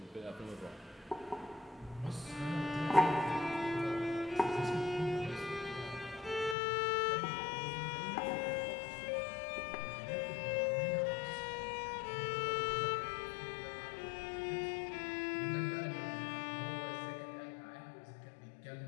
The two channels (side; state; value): right; drops out; at 6.6 s